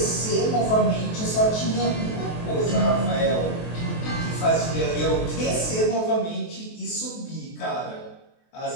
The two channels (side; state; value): right; late; 23 ms